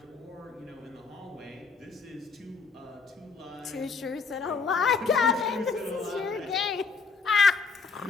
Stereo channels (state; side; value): quieter; right; 5.0 dB